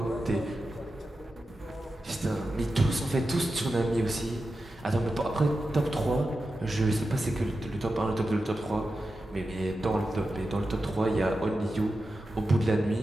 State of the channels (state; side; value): normal; both; correlation 0.91